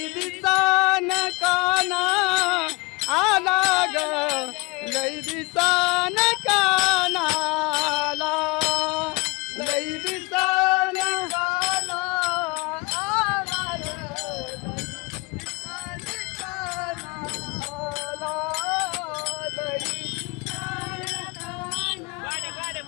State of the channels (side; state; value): right; quieter; 26.5 dB